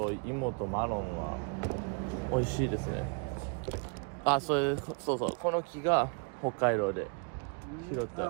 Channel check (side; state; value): left; quieter; 37.0 dB